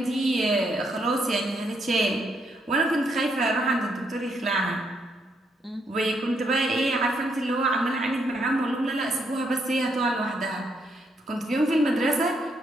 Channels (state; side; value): normal; both; correlation 0.75